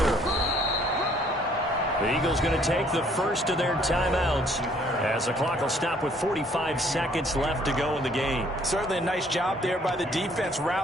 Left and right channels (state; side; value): normal; both; correlation 0.62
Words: The Eagles going to take the first of their timeouts as the clock will stop with 45 seconds left to go in the game. Certainly a nice job there by the defense